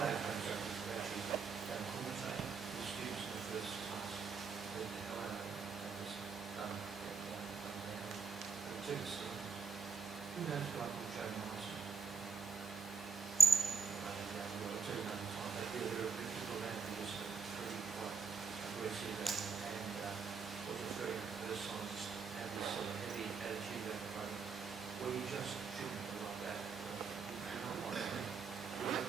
instructors who actually don't commentate with students in the first class. They the hell out of it. They just done down. And it took us to who knows a guy called Joe Morrison? It took another time. They did a bit of people around who was pretty quite aggressive and was very personalised, had this sort of heavy attitude about the program. Well, you just shouldn't be like that. You cannot like that. We have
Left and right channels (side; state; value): left; quieter; 5.1 dB